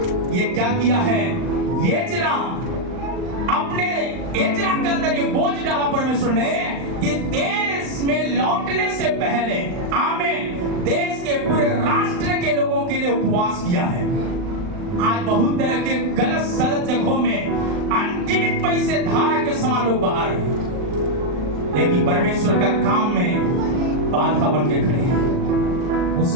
ये क्या किया है? अपने एजरा के अंदर ये बोझ डाला परमेश्वर ने कि देश में लौटने से पहले, आमीन, देश के पूरे राष्ट्र के लोगों के लिए उपवास किया है। आज बहुत तरह के गलत सलत जगहों में अनगिनत पैसे धारा के समान लोग बाहर हैं, लेकिन परमेश्वर का काम में बाधा बन के खड़े हैं। उस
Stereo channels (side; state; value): left; late; 39 ms